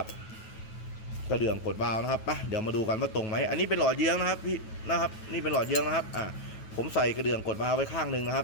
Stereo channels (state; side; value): late; right; 9.2 ms